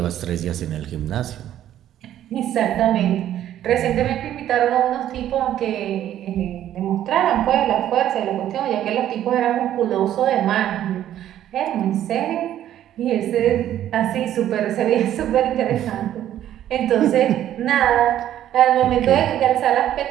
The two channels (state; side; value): quieter; left; 11.7 dB